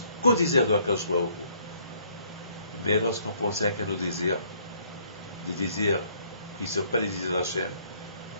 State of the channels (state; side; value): inverted; both; correlation -0.64